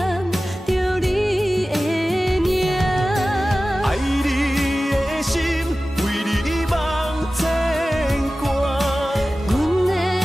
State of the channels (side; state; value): both; normal; correlation 0.96